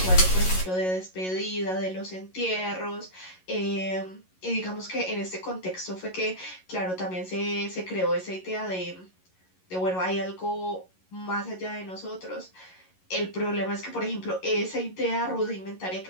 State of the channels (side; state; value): right; late; 11 ms